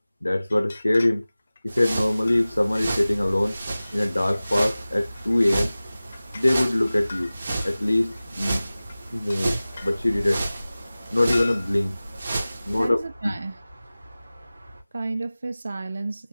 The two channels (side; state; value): both; inverted; correlation -0.97